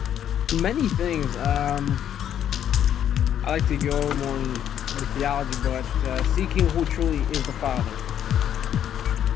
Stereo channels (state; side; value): quieter; right; 9.9 dB